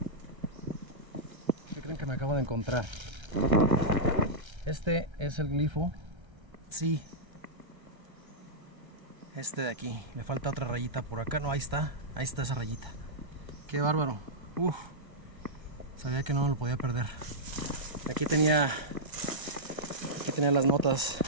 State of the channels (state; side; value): late; left; 1.3 ms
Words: ¿Qué creen que me acabo de encontrar? Este es el glifo. Sí, este de aquí, le falta otra rayita por acá. No, ahí está esa rayita. Qué bárbaro. Uf, sabía que no lo podía perder. Aquí tenía las notas